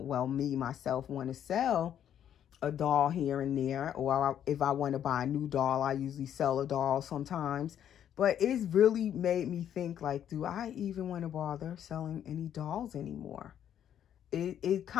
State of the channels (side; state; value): right; quieter; 9.9 dB